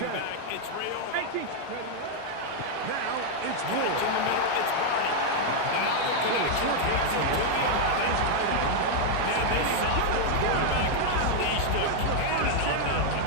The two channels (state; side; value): different; both; correlation 0.00